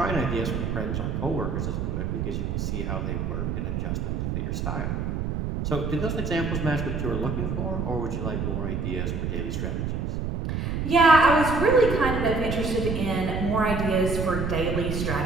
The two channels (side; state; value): right; noise; rumble, 2 dB below the sound